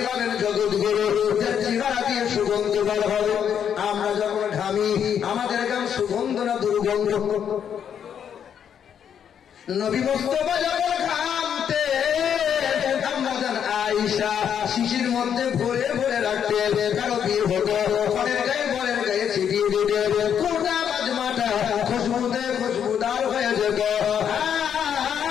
হবেন জগৎগুরু, যার চেহারা দিয়ে সুগন্ধ বার হবে। আমরা যখন ঘামি আমাদের গান সুগন্ধ না দুর্গন্ধ? নবী মুস্তাফা যখন ঘামতে আয়েশা শিশির মধ্যে ভরে ভরে রাখতে, কারো বিয়ে হতো ঘরের গায়ে বরের গায়ে ছিটিয়ে দিতে, কোটা মাজমাটা খুশবুতে খুশবুদার হয়ে যেত।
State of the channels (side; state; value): right; quieter; 8.4 dB